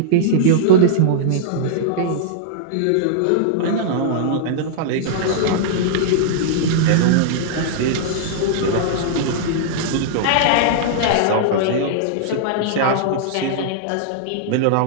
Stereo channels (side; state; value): both; different; correlation -0.02